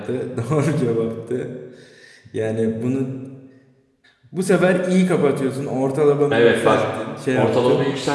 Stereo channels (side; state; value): both; identical; correlation 1.00